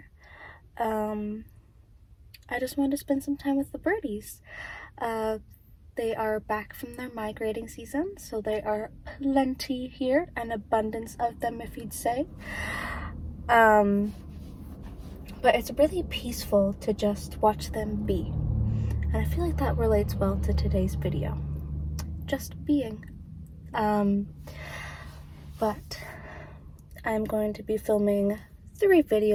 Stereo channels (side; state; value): both; identical; correlation 1.00